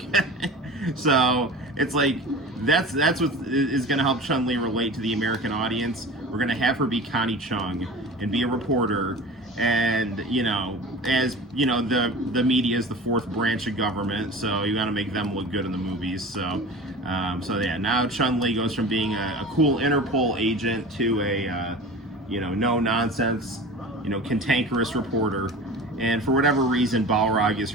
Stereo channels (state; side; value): normal; both; correlation 0.36